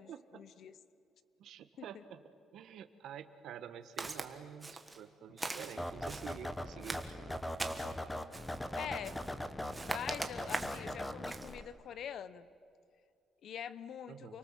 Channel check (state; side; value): normal; both; correlation 0.84